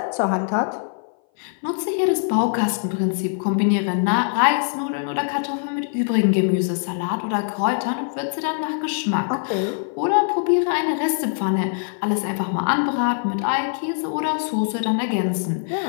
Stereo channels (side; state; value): right; silent; 58 dB below the other